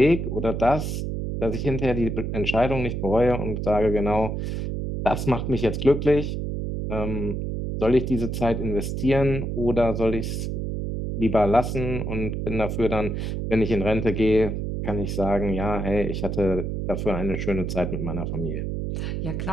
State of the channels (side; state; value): right; noise; hum, 3 dB below the sound